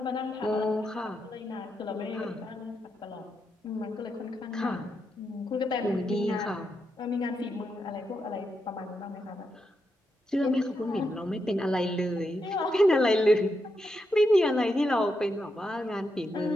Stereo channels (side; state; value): both; normal; correlation 0.84